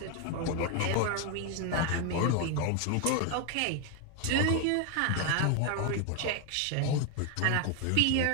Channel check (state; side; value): different; both; correlation 0.01